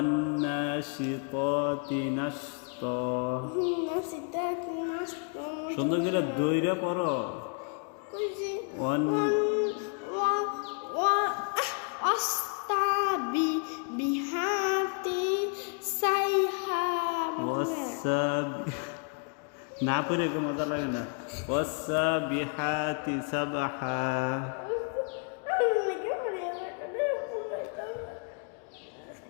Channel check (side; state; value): right; quieter; 38.1 dB